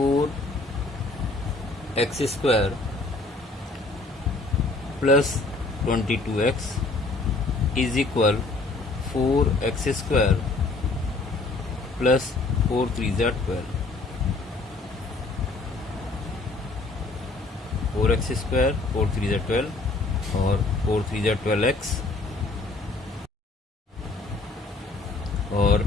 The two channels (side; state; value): right; quieter; 3.3 dB